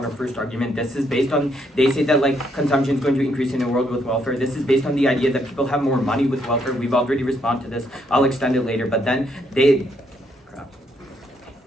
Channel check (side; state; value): both; normal; correlation 0.73